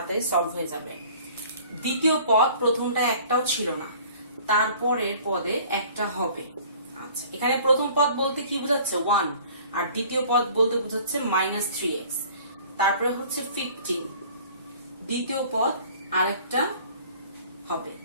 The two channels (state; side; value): inverted; both; correlation -0.50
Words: সলভ হয়ে যাবে। দ্বিতীয় পদ প্রথমটা একটাও ছিল না, তারপরের পদে একটা হবে। আচ্ছা, এখানে প্রথম পদ বলতে কি বোঝাচ্ছে? 1, আর দ্বিতীয় পদ বলতে বোঝাচ্ছে -3x। তারপরে হচ্ছে 15, দ্বিতীয় পদ আরেকটা হবে।